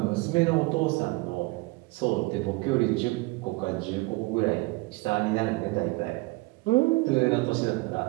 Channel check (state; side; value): quieter; left; 23.8 dB